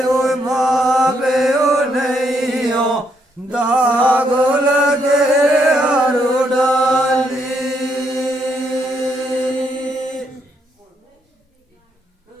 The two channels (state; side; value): normal; both; correlation 0.75